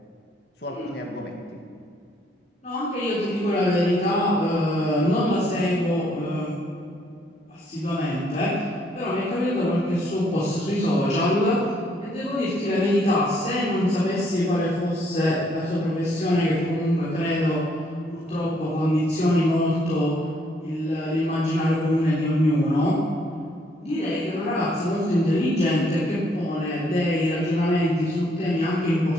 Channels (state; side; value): normal; both; correlation 0.68